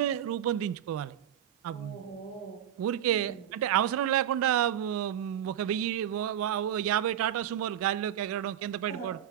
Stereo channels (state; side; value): quieter; left; 10.5 dB